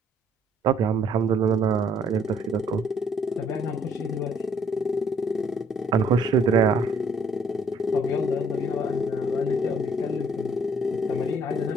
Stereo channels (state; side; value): normal; both; correlation 0.64